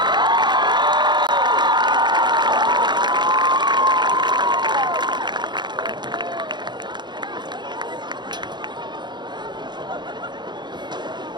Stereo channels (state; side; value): late; left; 0.21 ms